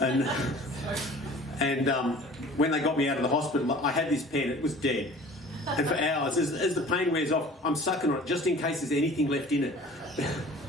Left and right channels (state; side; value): normal; both; correlation 0.46